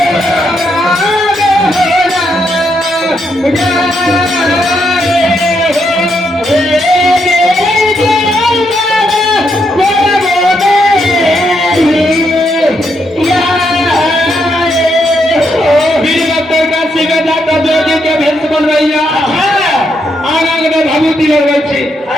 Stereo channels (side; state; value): both; normal; correlation 0.78